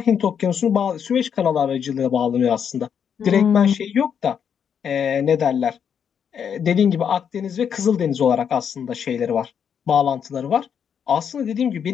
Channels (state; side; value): quieter; right; 7.7 dB